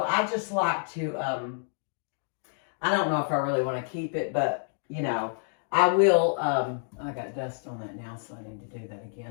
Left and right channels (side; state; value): right; silent; digital silence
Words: I just like to, I don't know if I really want to keep it, but, you know, I will, I got dust on that now, so I need to do that